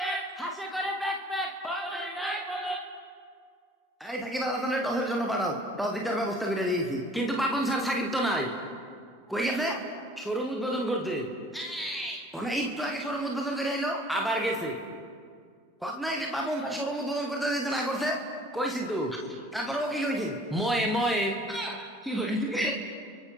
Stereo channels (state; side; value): normal; both; correlation 0.52